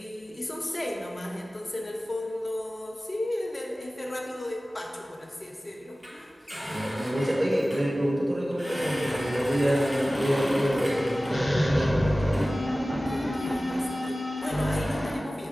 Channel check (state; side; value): normal; both; correlation 0.97